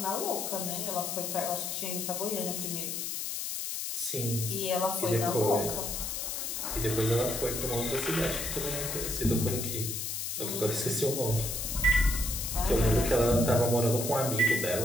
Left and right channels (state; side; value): noise; left; hiss, 3 dB below the sound